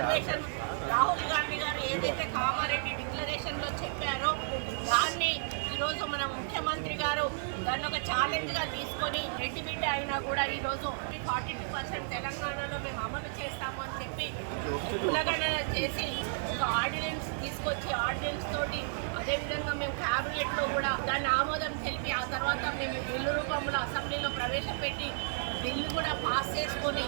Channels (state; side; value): silent; left; 56 dB below the other